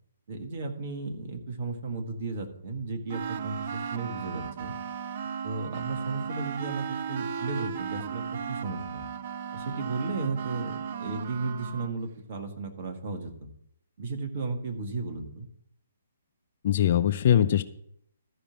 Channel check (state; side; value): inverted; both; correlation -0.56